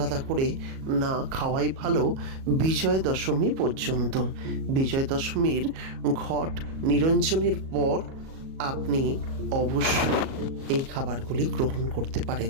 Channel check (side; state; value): left; late; 37 ms